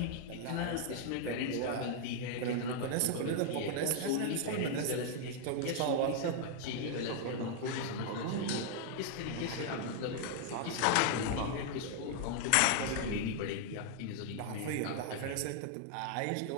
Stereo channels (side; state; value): both; different; correlation 0.00